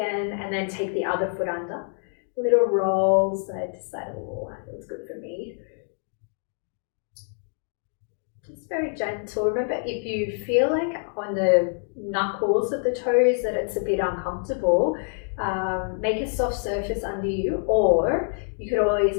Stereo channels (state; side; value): silent; right; 61 dB below the other